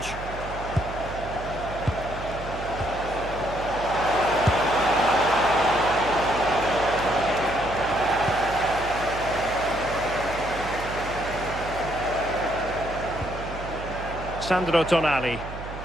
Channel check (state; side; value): noise; right; hum, 10 dB below the sound